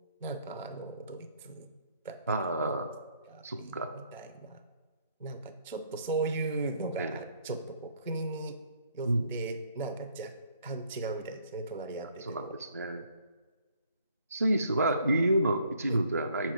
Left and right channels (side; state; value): both; inverted; correlation -0.66